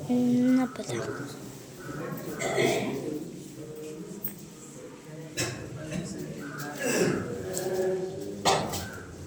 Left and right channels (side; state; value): both; identical; correlation 1.00